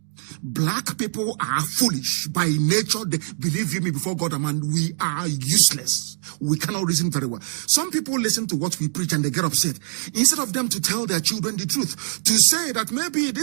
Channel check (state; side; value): silent; left; digital silence